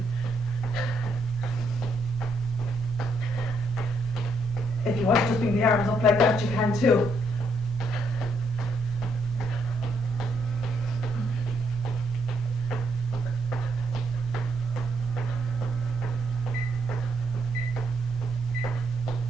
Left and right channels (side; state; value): both; normal; correlation 0.75